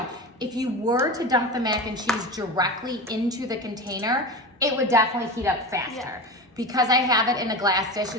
if you were to dump the mac and cheese directly into the container, it would definitely heat up faster. Yeah. Because I have it in a glass dish,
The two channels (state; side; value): normal; both; correlation 0.26